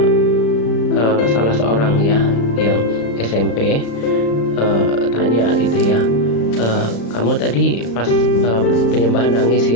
salah seorang ya yang SMP, tanya gitu ya, kamu tadi pas penyembahan nangis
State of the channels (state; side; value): late; right; 35 ms